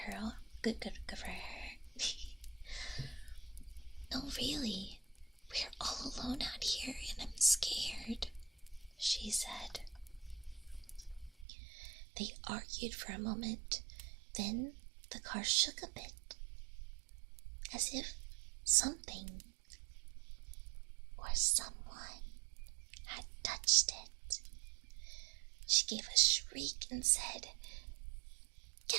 Good for her. "No, really. We're all alone out here and I'm scared," she said. They argued for a moment. Then the car shook a bit, as if something or someone had touched it. She gave a shriek and said,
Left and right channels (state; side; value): drops out; left; at 11.5 s